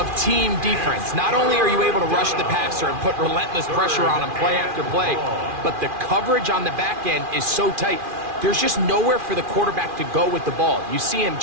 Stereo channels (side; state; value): left; late; 2.4 ms